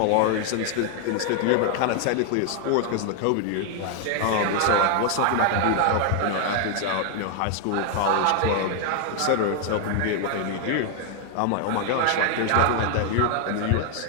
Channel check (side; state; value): both; different; correlation 0.00